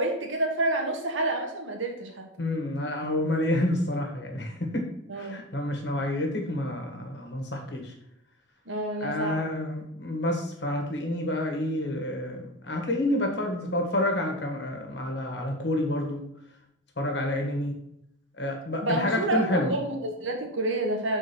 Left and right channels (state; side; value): normal; both; correlation 0.21